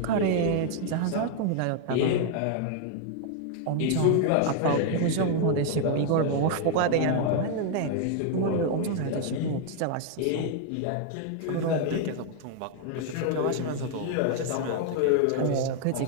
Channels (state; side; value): different; both; correlation 0.00